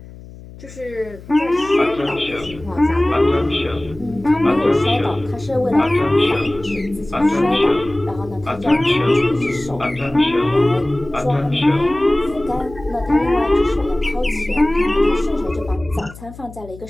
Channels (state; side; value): noise; left; hum, 17 dB below the sound